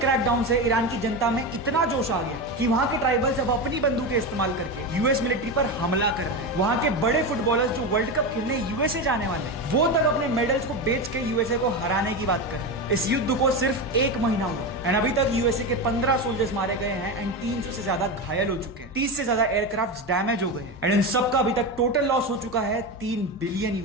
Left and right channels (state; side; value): normal; both; correlation 0.18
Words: से ईरान की जनता में इतना जोश आ गया कि वहां के ट्राइबल्स अब अपनी बंदूकें इस्तेमाल करके यूएस मिलिट्री पर हमला कर रहे हैं। वहां के बड़े फुटबॉलर्स जो वर्ल्ड कप खेलने यूएसए जाने वाले हैं, वो तक अपने मेडल्स को बेच के यूएसए को हराने की बात कर रहे हैं। इस युद्ध को सिर्फ 1 महीना हुआ एंड अभी तक यूएसए के 15 सोल्जर्स मारे गए हैं एंड 300 से ज्यादा घायल हो चुके हैं। 30 से ज्यादा एयरक्राफ्ट डैमेज हो गए हैं एंड इन सबका अभी तक टोटल लॉस हो चुका है $3 बिलियन,